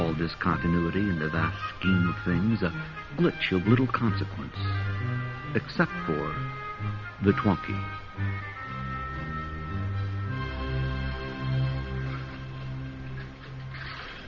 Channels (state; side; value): identical; both; correlation 1.00